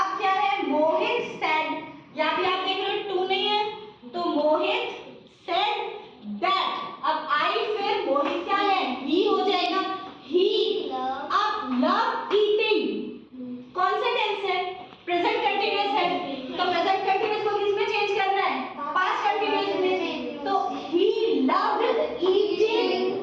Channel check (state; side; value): identical; both; correlation 1.00